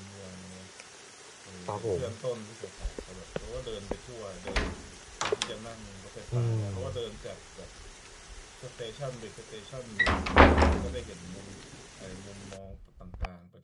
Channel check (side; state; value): both; identical; correlation 1.00